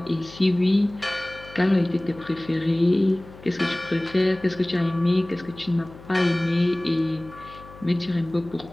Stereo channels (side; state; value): left; noise; hum, 19 dB below the sound